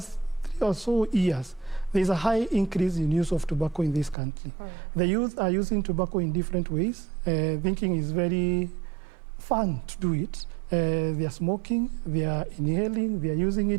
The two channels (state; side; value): drops out; left; at 4.2 s